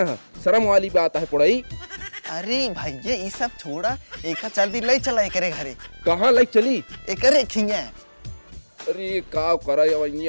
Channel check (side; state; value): both; inverted; correlation -1.00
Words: हैं, शर्म वाली बात है पुड़ाई। अरे भैया ये सब छोड़ा, एक जल्दी ले चला एकरे घरे। कहाँ लाइक चली? एकरे खिंगे। अरे का करा